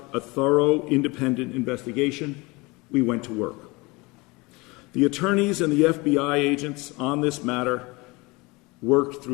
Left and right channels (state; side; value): quieter; right; 24.7 dB